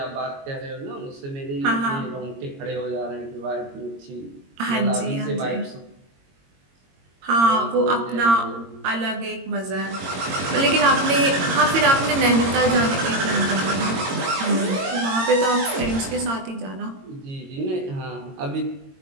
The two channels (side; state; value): left; late; 22 ms